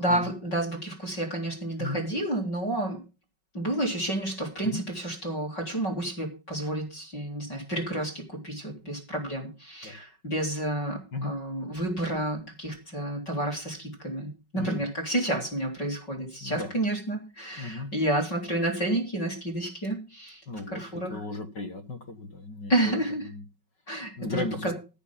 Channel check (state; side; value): late; right; 5.3 ms